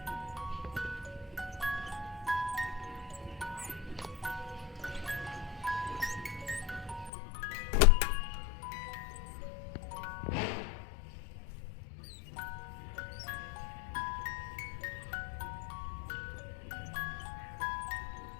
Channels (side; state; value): right; drops out; at 7.1 s